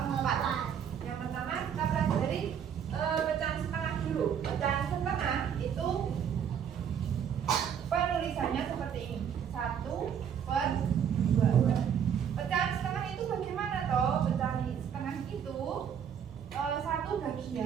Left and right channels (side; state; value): left; quieter; 8.2 dB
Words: Yang pertama kita pelajari pecahan setengah dulu. Pecahan setengah itu penulisannya seperti ini, 1/2. Pecahan setengah itu bagaimana toh? Pecahan setengah itu satu